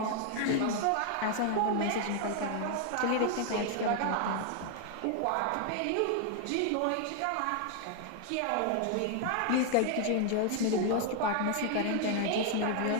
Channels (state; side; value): different; both; correlation 0.00